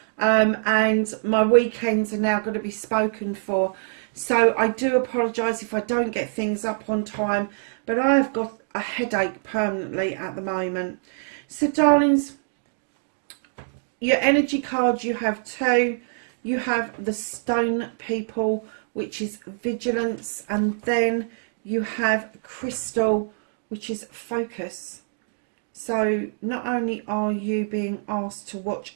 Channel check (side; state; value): left; silent; digital silence